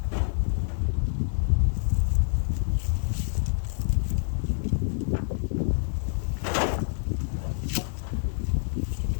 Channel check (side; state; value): right; silent; 59 dB below the other